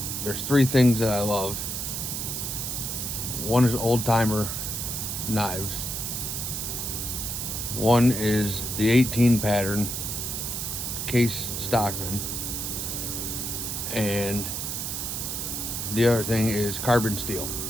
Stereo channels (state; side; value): noise; right; hiss, 3 dB below the sound